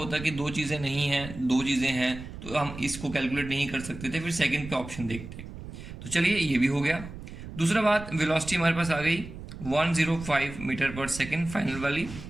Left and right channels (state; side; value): noise; right; rumble, 12 dB below the sound